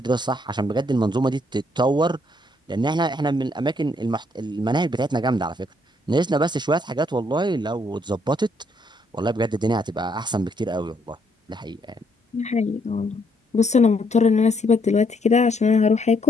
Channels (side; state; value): both; normal; correlation 0.71